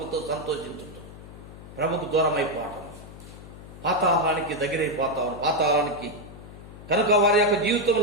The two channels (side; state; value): left; noise; hum, 16 dB below the sound